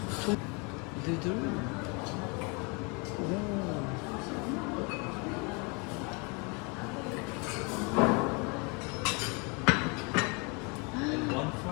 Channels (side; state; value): right; quieter; 31.5 dB